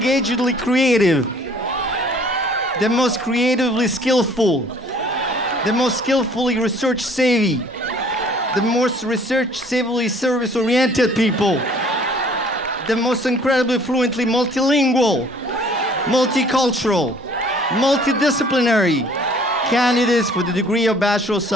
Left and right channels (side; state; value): both; normal; correlation 0.55